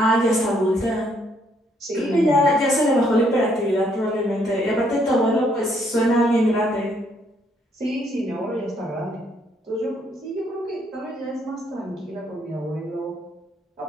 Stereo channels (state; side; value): normal; both; correlation 0.69